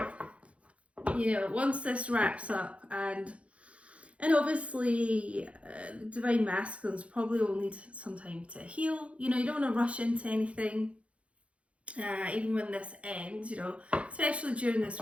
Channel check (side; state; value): left; late; 0.062 ms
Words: You know, once this wraps up and And obviously, the Divine Masculines probably will need some time to heal. You know, you don't want to rush into anything, even when this ends, you know, especially during this